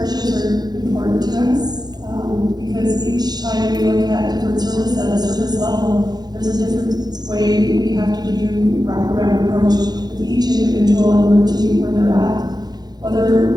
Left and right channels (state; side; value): late; left; 0.19 ms